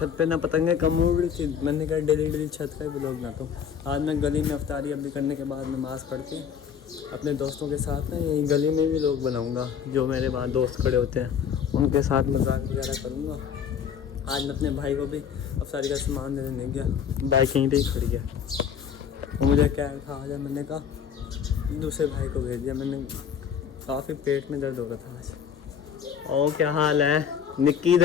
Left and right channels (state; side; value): quieter; right; 7.7 dB